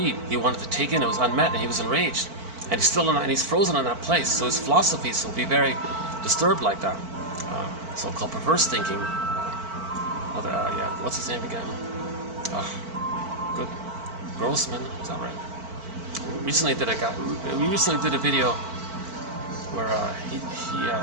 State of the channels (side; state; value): left; late; 4.5 ms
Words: He wanted to take in, it was unmet, and he was enraged. And he's still in that, and he's frozen in that place. So his philosophies will be very disturbed like that. So-called perverse thinking. Yeah, what's his name again? Good. Grossman, is that right? We recently did a video where